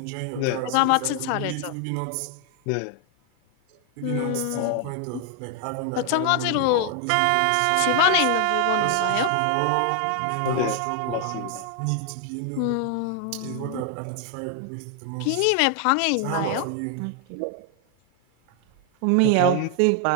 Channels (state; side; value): different; both; correlation 0.00